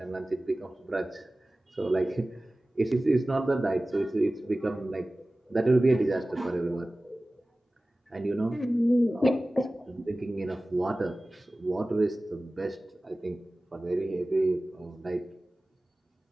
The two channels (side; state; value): both; normal; correlation 0.97